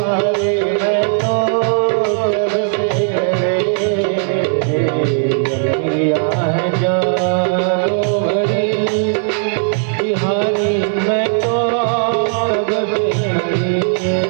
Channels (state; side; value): silent; left; digital silence